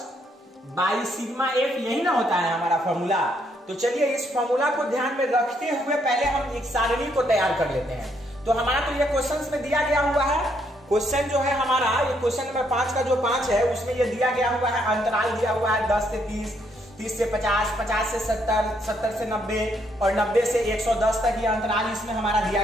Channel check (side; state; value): both; normal; correlation 0.73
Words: by sigma F, यही ना होता है हमारा फॉर्मूला। तो चलिए इस फॉर्मूला को ध्यान में रखते हुए पहले हम एक सारणी को तैयार कर लेते हैं। तो हमारा तो ये क्वेश्चन में दिया गया हुआ है, क्वेश्चन जो है हमारा ये क्वेश्चन नंबर 5 का जो 5 है उसमें ये दिया गया हुआ है, अंतराल दिया हुआ है 10 से 30, 30 से 50, 50 से 70, 70 से 90 और 90 से 110 तक ये अंतराल इसमें हमारा दिया